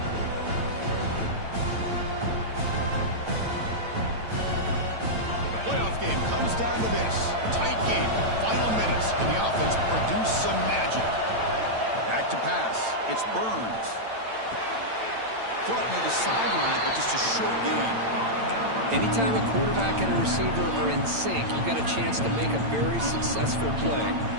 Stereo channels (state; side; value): late; left; 8.9 ms